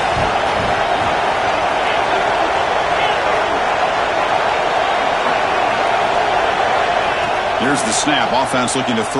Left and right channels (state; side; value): identical; both; correlation 1.00